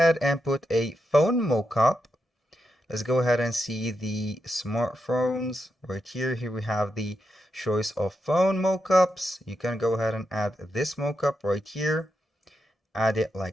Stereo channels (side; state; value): both; normal; correlation 0.85